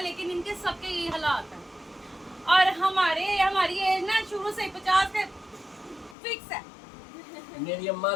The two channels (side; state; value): right; drops out; at 6.2 s